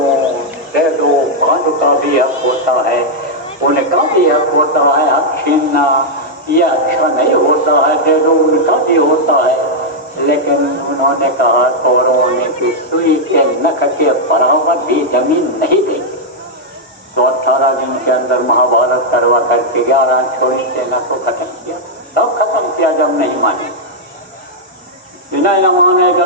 दे दो, पांडु का भी हक होता है, उनका भी हक होता है, हक छीनना ये अच्छा नहीं होता है, दे दो, उनका भी होता है। लेकिन उन्होंने कहा कौरवों ने कि सुई के नख के बराबर भी जमीन नहीं देंगे। तो 18 दिन के अंदर महाभारत करवा करके 11 छोड़ी सेना को खत्म किया। तब खत्म किया जब नहीं माने, बिना न माने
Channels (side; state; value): both; normal; correlation -0.04